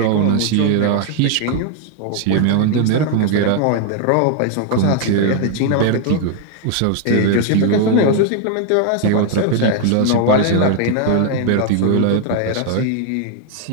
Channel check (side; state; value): both; different; correlation 0.00